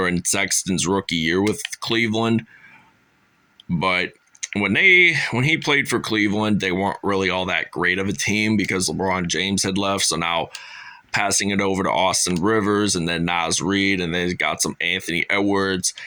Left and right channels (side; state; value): both; identical; correlation 1.00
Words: Sexton's rookie year with Cleveland. But when he played for Cleveland, they weren't really all that great of a team because LeBron James had left. So now passing it over to Austin Rivers and then Naz Reid, and then got some Anthony Edwards.